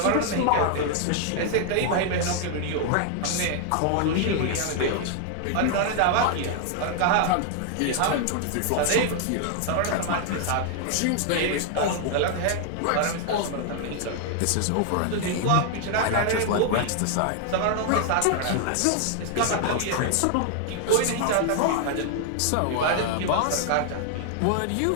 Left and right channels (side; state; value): both; different; correlation 0.00